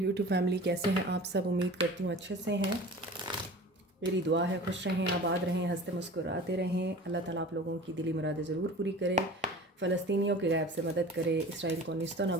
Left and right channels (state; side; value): normal; both; correlation 0.40